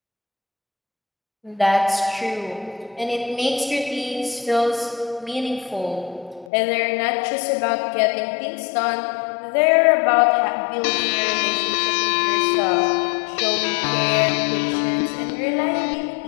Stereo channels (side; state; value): right; drops out; at 6.5 s